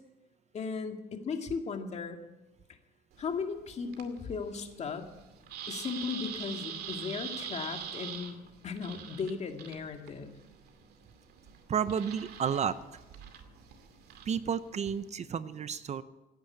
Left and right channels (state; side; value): normal; both; correlation 0.33